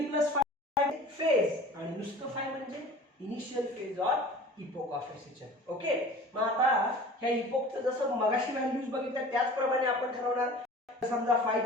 प्लस फेज आणि नुसतं फाय म्हणजे initial phase or epoch of SHM. Okay, मग आता ह्या इपोकचं जसं मगाशी व्हॅल्यूज बघितल्या त्याचप्रमाणे आपण ठरवणार. समजा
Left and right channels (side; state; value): both; normal; correlation 0.42